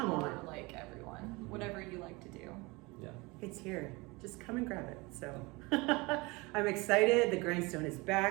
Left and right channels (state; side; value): quieter; left; 24.9 dB